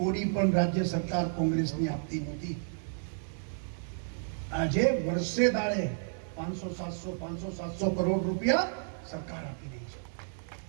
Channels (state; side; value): silent; left; 57 dB below the other